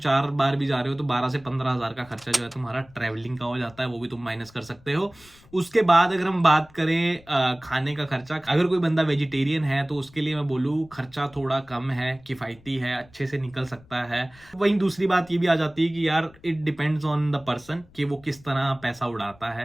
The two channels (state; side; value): noise; left; rumble, 26 dB below the sound